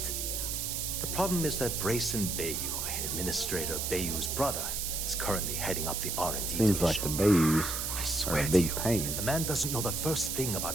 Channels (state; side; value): noise; right; hiss, 2 dB below the sound